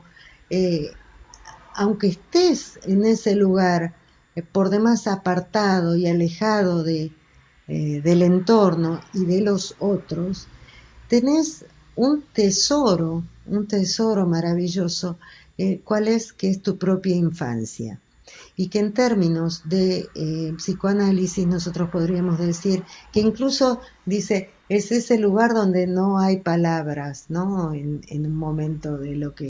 eh, aunque estés en ese lugar por demás apartado y alejado del entorno y de los otros, tenés un tesoro maravilloso, ¿cuál es? Que es tu propia infancia. Y que en términos de psicoanálisis nosotros podríamos decir que incluso dice, es ese lugar donde no hay palabras, ¿no? En un momento de lo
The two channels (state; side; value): identical; both; correlation 1.00